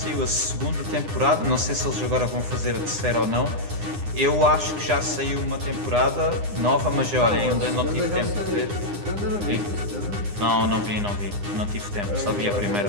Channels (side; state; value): left; late; 9.8 ms